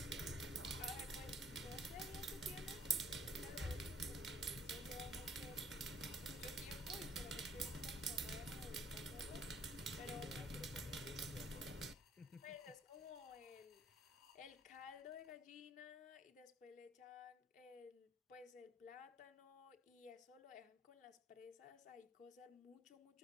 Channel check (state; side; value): normal; both; correlation 0.61